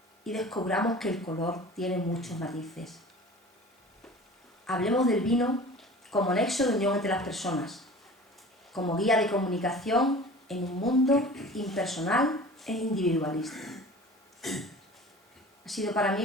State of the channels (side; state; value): both; normal; correlation 0.41